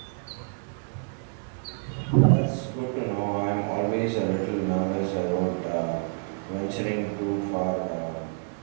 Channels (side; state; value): left; silent; 57 dB below the other